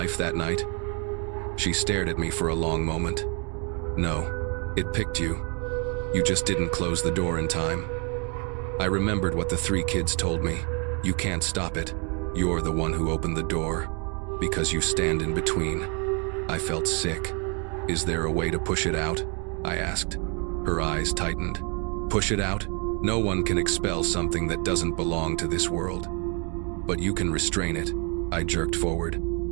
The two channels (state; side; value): quieter; left; 35.9 dB